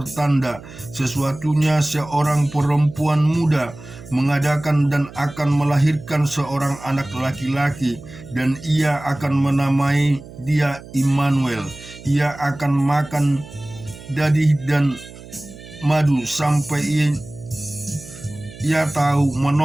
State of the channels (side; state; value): right; noise; hum, 17 dB below the sound